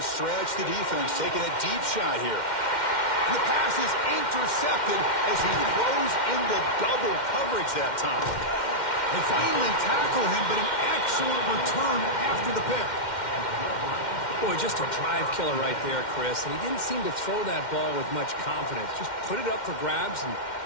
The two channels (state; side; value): late; right; 2.1 ms